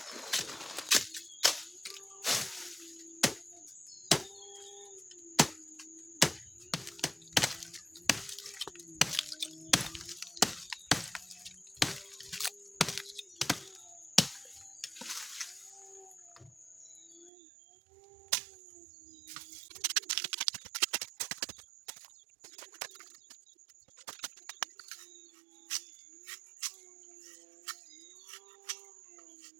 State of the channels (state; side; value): drops out; left; at 17.3 s